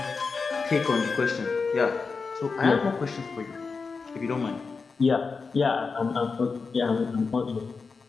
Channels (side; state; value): right; quieter; 4.7 dB